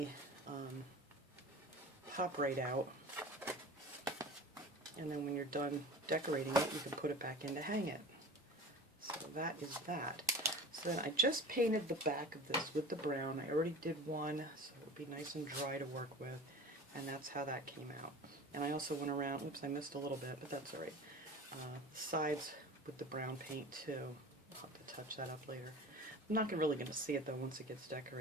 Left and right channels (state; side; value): normal; both; correlation 0.36